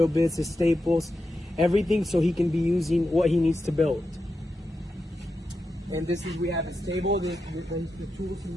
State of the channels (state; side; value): normal; both; correlation 0.88